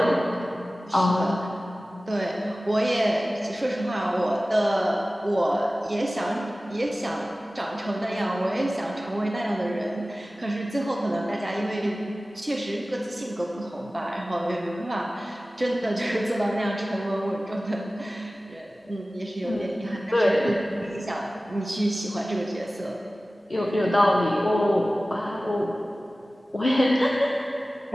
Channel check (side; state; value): both; normal; correlation 0.97